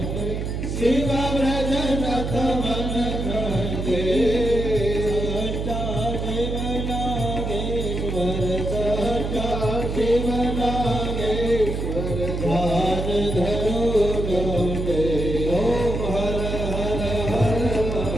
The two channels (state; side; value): noise; right; hum, 3 dB below the sound